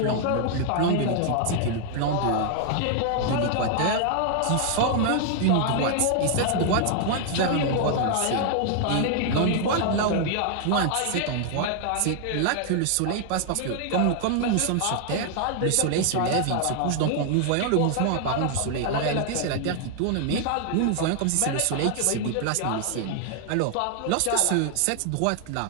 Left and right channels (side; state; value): both; different; correlation 0.00